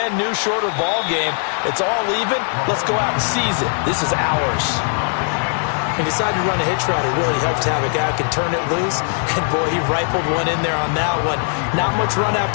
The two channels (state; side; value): silent; right; 57 dB below the other